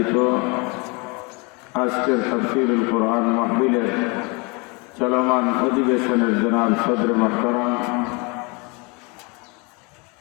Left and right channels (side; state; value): right; quieter; 29.5 dB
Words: আজকের তাফসীরুল কোরআন মাহফিলের চলমান অধিবেশনের জনাব সদর মুহতারাম,